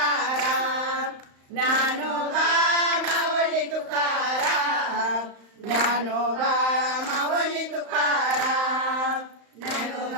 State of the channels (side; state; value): left; late; 35 ms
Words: ज्ञानोबा माऊली तुकाराम ज्ञानोबा माऊली तुकाराम